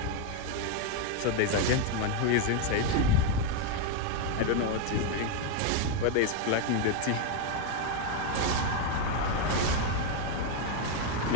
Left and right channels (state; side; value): different; both; correlation 0.01